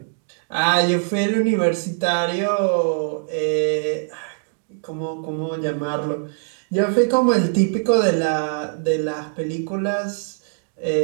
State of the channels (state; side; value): silent; left; digital silence